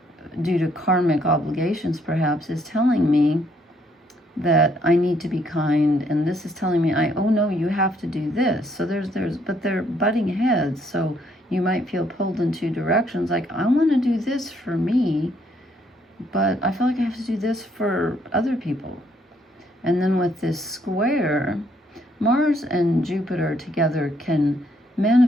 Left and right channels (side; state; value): both; normal; correlation 0.69